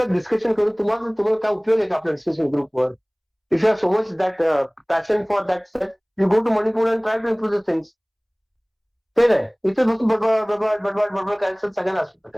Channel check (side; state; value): both; identical; correlation 1.00